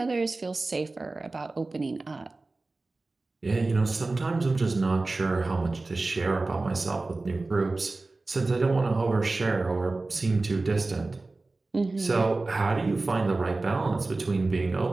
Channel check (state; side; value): quieter; left; 3.3 dB